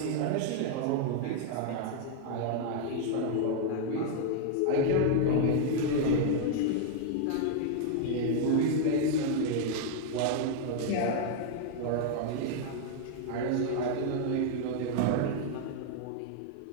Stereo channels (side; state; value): both; different; correlation 0.00